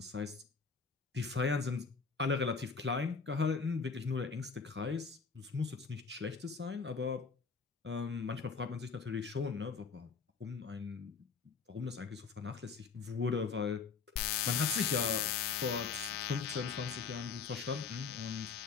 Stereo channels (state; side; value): quieter; right; 5.3 dB